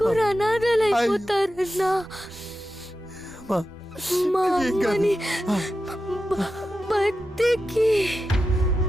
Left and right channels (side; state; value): both; normal; correlation 0.91